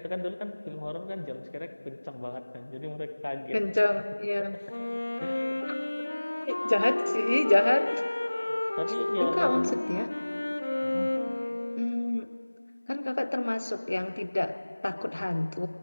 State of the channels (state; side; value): inverted; both; correlation -1.00